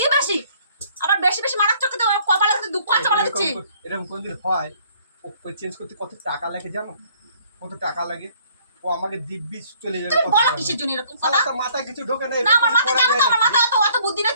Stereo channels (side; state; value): both; inverted; correlation -0.60